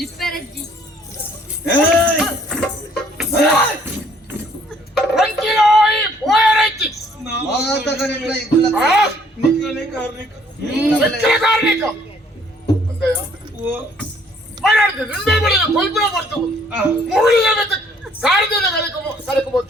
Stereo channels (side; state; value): both; normal; correlation 0.61